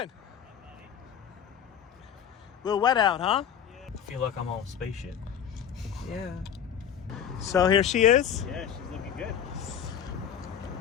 A little wet out, huh? Yeah. I feel like I'm on a spaceship. Yeah. So here she is. Yeah, she's looking good.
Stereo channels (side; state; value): right; quieter; 8.8 dB